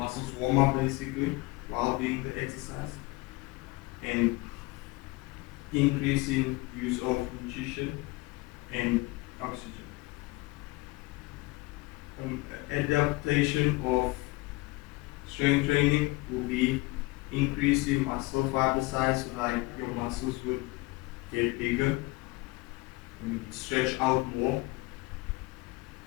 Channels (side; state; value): right; quieter; 22.6 dB